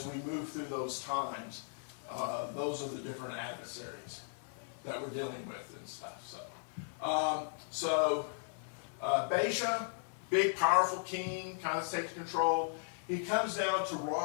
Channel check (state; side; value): silent; right; 53 dB below the other